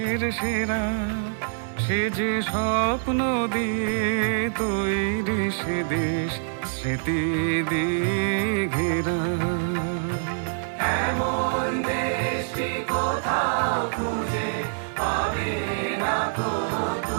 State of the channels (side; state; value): left; silent; digital silence